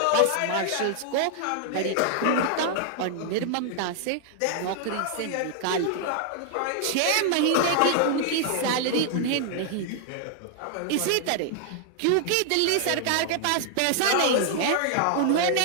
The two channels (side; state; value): both; different; correlation 0.00